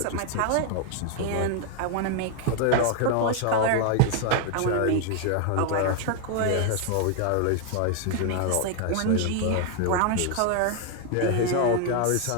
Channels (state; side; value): different; both; correlation 0.00